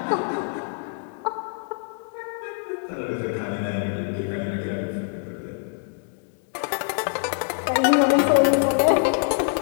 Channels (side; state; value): right; silent; 55 dB below the other